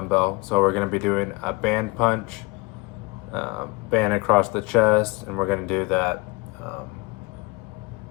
So, we're going to be doing a band punch. Band across the chest, and we're going to do that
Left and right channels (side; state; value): right; quieter; 25.7 dB